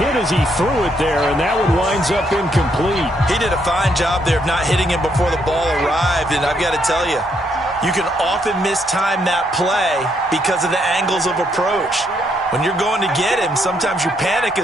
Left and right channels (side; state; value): both; normal; correlation 0.74